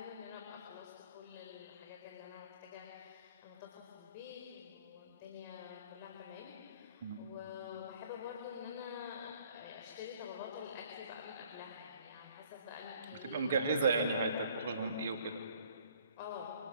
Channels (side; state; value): both; inverted; correlation -0.58